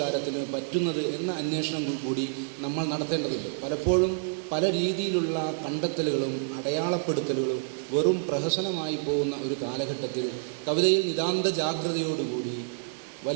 പറ്റുന്നത് എന്ന അന്വേഷണം കൂടി നമ്മൾ നടത്തേണ്ടതുണ്ട്. പലപ്പോഴും പല രീതിയിലുള്ള കണ്ടെത്തലുകളും അടയാളപ്പെടുത്തലുകളും വെറും പ്രഹസനമായി പോകുന്ന ഒരു കാലഘട്ടത്തിൽ കവിതയിൽ നിതാന്ത ജാഗ്രതയോടുകൂടി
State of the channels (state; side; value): silent; left; digital silence